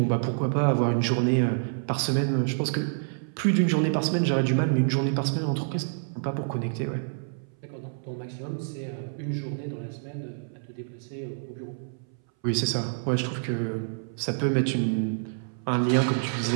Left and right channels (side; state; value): left; silent; 60 dB below the other